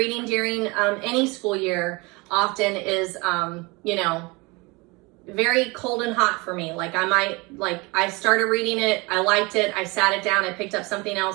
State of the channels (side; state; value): left; quieter; 25.8 dB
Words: during any school year often is, you know, very cold and hot for me. Like I started reading it, I liked it, I sat it down, I picked up something